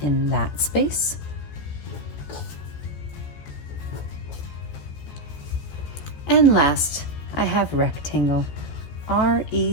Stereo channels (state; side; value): late; right; 14 ms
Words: in that space? And last, I have rectangle.